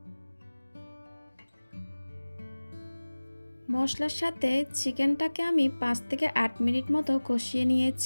মশলার সাথে চিকেনটাকে আমি 5 থেকে 8 মিনিট মতো কষিয়ে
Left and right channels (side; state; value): both; inverted; correlation -1.00